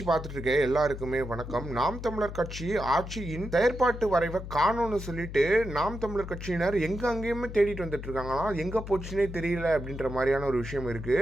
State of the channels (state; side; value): noise; left; hum, 9 dB below the sound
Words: பார்த்துட்டு இருக்க எல்லாருக்குமே வணக்கம். நாம் தமிழர் கட்சி ஆட்சியின் செயற்பாட்டு வரைவை காணோன்னு சொல்லிட்டு நாம் தமிழர் கட்சியினர் எங்க அங்கேயுமே தேடிட்டு வந்துட்டு இருக்காங்களா, எங்க போச்சுன்னே தெரியல அப்படின்ற மாதிரியான ஒரு விஷயம் இருக்கு.